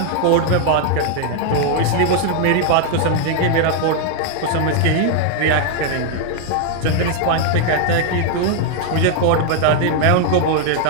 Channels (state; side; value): different; both; correlation 0.00